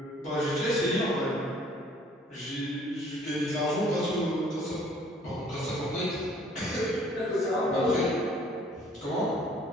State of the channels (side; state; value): both; normal; correlation 0.57